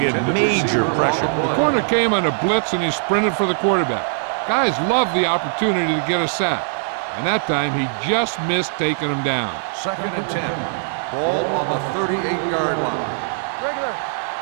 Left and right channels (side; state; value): left; silent; digital silence